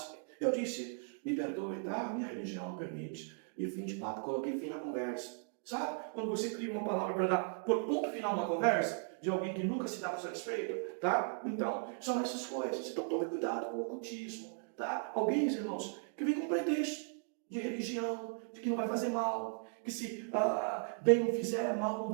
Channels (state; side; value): silent; left; 53 dB below the other